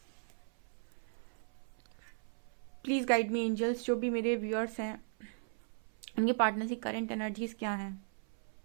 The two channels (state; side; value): silent; left; 53 dB below the other